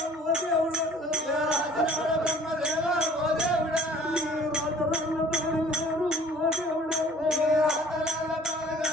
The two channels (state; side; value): normal; both; correlation 0.51